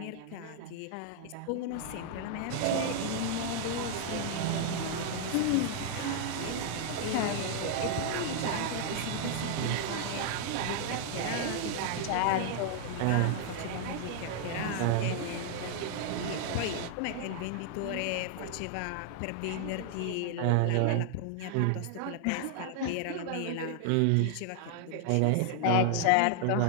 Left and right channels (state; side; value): different; both; correlation 0.00